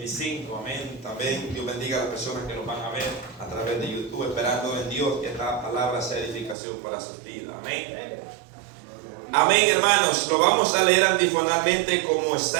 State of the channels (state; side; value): drops out; left; at 6.6 s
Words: Amén. También Dios bendiga a las personas que nos van a ver a través de YouTube, esperando en Dios que esta palabra sea edificación para sus vidas. Amén. Amén, hermanos. Lo vamos a leer antifonalmente como